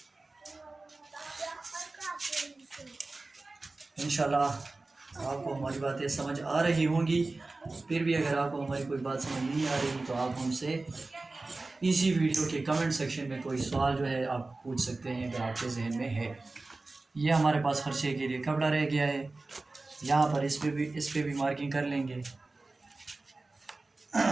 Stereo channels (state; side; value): quieter; left; 3.3 dB